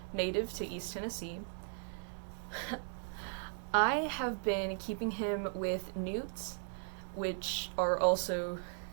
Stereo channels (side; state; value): left; silent; digital silence